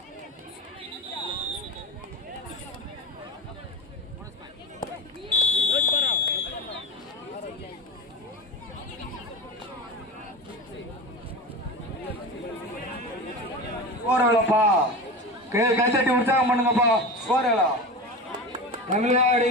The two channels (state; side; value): normal; both; correlation 0.27